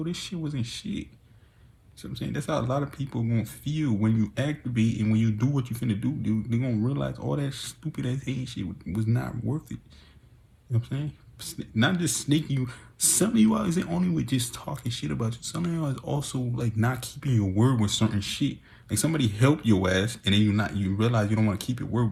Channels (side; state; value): both; identical; correlation 1.00